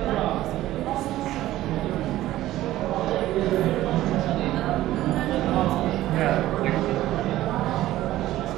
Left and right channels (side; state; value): left; quieter; 15.0 dB